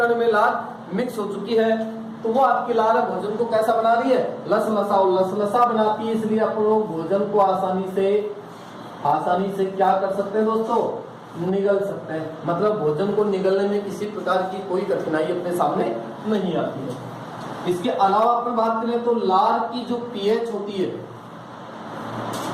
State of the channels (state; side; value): identical; both; correlation 1.00